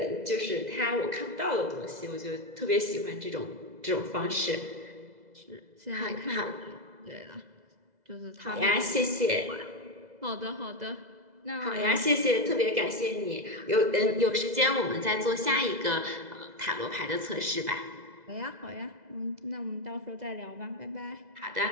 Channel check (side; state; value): left; late; 2.0 ms